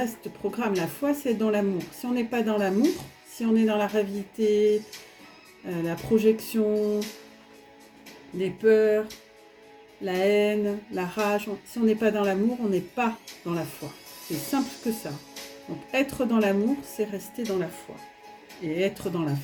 programme. La foi, c'est dans l'amour. Si on n'est pas dans l'amour, si on est dans la réalité, la projection, les peurs, la haine, la rage, si on n'est pas dans l'amour, on n'est pas dans la foi. C'est simple que ça. Donc être dans l'amour, c'est rester dans la foi. Et être dans la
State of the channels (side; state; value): both; identical; correlation 1.00